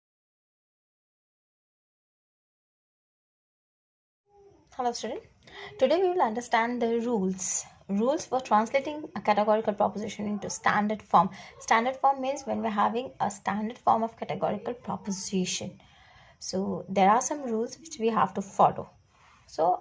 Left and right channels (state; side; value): identical; both; correlation 1.00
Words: student. Today we will understand the rules for translating a categorical proposition into standard form. Standard form means when we're having a standard form of categorical proposition. So there are some rules which we have to follow. So